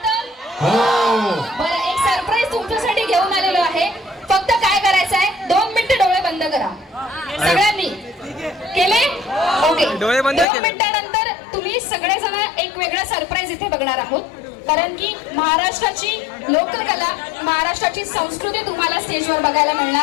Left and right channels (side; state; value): right; drops out; at 10.5 s